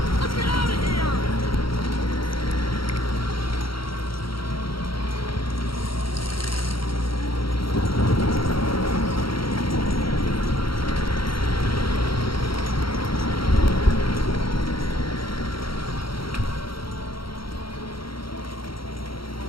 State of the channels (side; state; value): right; late; 0.74 ms